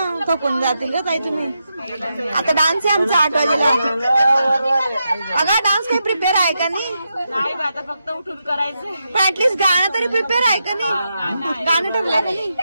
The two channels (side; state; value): both; inverted; correlation -0.85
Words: थकून जातील ग ताई तुम्ही. आता डान्स आहे आमचा 8 वाजेला. अगं डान्स काही प्रिपेअर आहे का नाही? आता फक्त उठून करायचं. पण ऍटलीस्ट गाणं तरी प्रिपेअर आहे का नाही? गाणं ठरलंय का नाही?